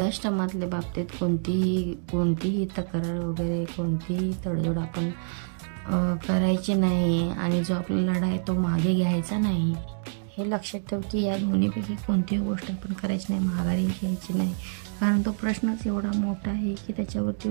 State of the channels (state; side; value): silent; left; digital silence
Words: बाबतीत कोणतीही तक्रार वगैरे कोणतीही तडजोड आपण करायची नाही, आणि जो आपला लढा आहे तो मागे घ्यायचा नाही. हे लक्षात ठेव की या दोन्हीपैकी कोणतीही गोष्ट आपण करायची नाही, माघारी घ्यायची नाही, कारण तो प्रश्नच एवढा मोठा आहे की त्याच्यावरती